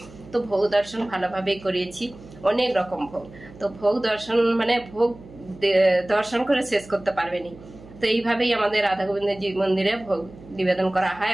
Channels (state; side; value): noise; right; hum, 20 dB below the sound